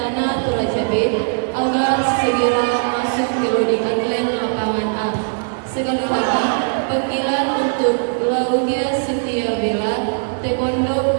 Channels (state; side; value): silent; left; digital silence